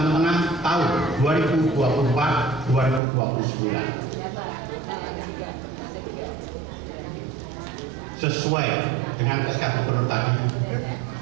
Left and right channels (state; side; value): drops out; left; at 3.0 s